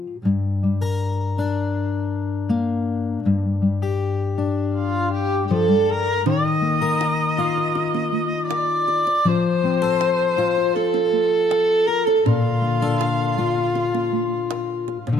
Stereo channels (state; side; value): normal; both; correlation 0.73